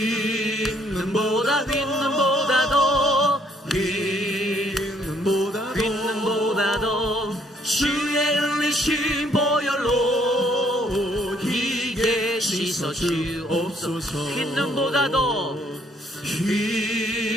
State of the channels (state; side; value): normal; both; correlation 0.66